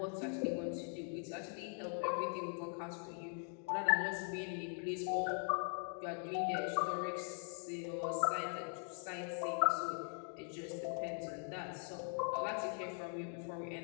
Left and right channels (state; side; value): silent; right; 50 dB below the other